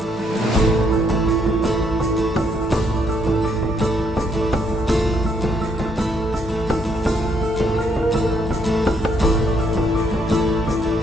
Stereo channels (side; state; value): both; normal; correlation 0.72